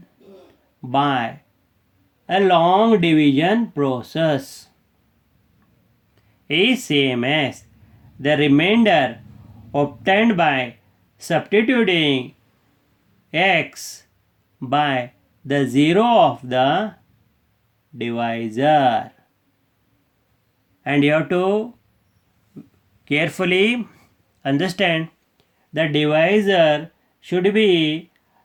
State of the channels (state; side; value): identical; both; correlation 1.00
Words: by a long division process is same as the remainder obtained by substituting x by the zero of the divisor. And you have to carefully understand the divisor should be